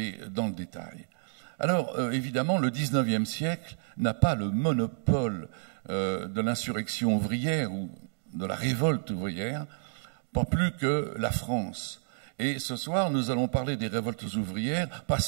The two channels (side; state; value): left; silent; digital silence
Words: dans le détail. Alors, évidemment, le XIXe siècle n'a pas le monopole de l'insurrection ouvrière ou de la révolte ouvrière, pas plus que la France. Et ce soir, nous allons parler des révoltes ouvrières, pas